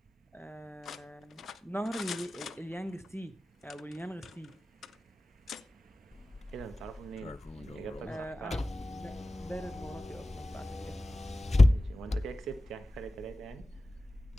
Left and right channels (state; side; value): normal; both; correlation 0.96